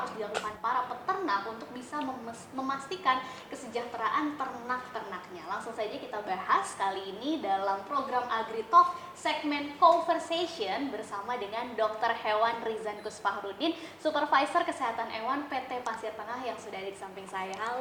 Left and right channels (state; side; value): identical; both; correlation 1.00